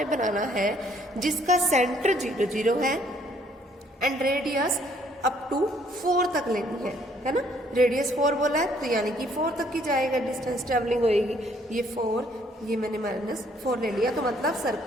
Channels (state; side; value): normal; both; correlation 0.64